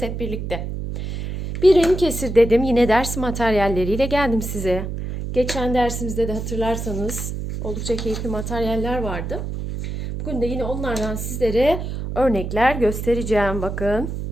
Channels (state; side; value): noise; right; hum, 5 dB below the sound